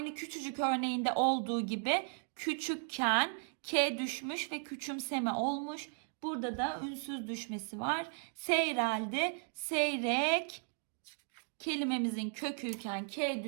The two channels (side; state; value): left; silent; 54 dB below the other